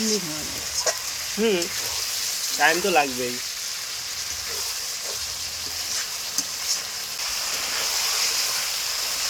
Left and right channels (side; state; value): both; identical; correlation 1.00